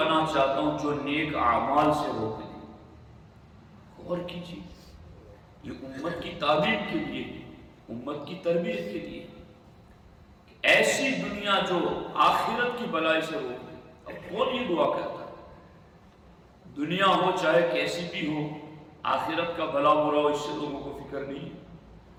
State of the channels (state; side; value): identical; both; correlation 1.00